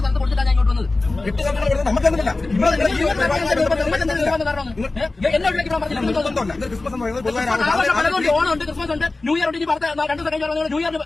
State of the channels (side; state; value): right; quieter; 3.3 dB